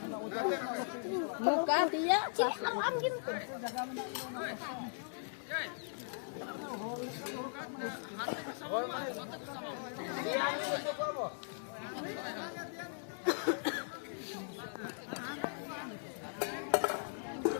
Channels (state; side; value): silent; right; digital silence